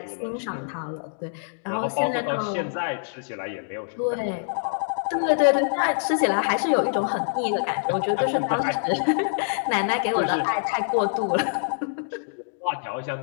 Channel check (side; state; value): right; silent; digital silence